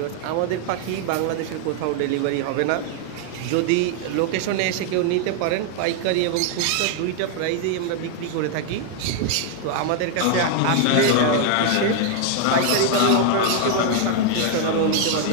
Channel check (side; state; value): both; different; correlation 0.00